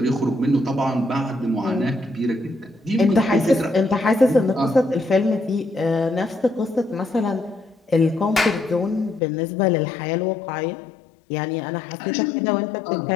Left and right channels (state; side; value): drops out; right; at 9.2 s